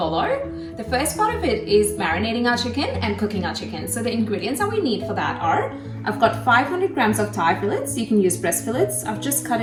The first part of it is marinating our chicken and cooking our chicken. So the ingredients that we need for that are, I've got 500 grams of thigh fillets. You can use breast fillets. I've just cut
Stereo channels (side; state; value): both; identical; correlation 1.00